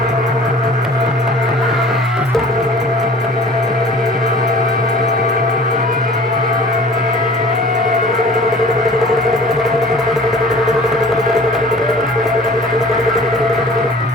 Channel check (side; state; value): both; normal; correlation 0.46